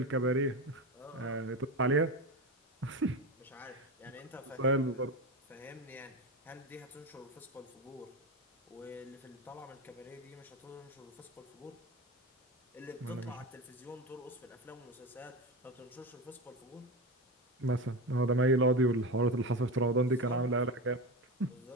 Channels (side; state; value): both; normal; correlation 0.21